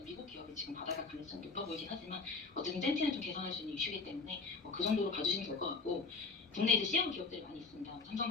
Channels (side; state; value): right; quieter; 4.3 dB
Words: 미국 기업이 지금 받아갈 가능성이 높아 보이긴 하지만 어쨌든 젠티는 좀 개선할 수 있는 이슈이기 때문에 그 정도로 봐주시면 될 것 같고, 국내 이제 CM 기업들이 많이 있습니다.